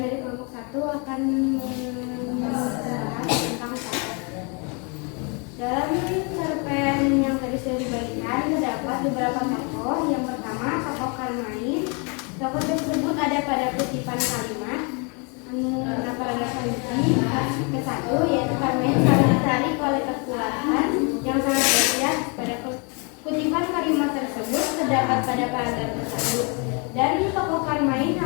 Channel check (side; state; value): right; quieter; 34.2 dB